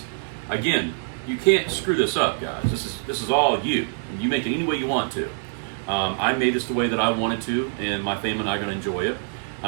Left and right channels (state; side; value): silent; left; digital silence